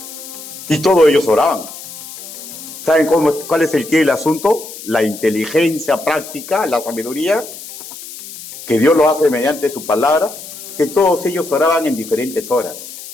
Y todos ellos oraban. ¿Saben cuál es el quid del asunto? La inteligencia práctica, la sabiduría, que Dios lo hace mediante su palabra, que todos ellos oraban en diferentes horas.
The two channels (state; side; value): noise; left; hiss, 13 dB below the sound